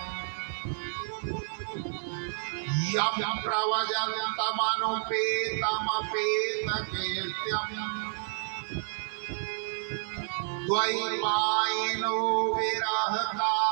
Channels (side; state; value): left; silent; 58 dB below the other